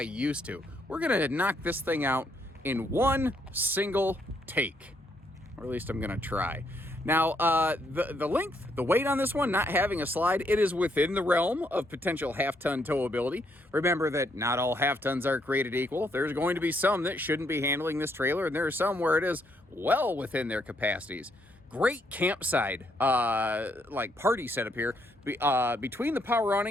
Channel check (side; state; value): both; normal; correlation 0.73